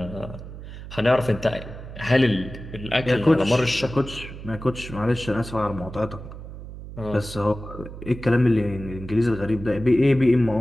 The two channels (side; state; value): right; noise; hum, 12 dB below the sound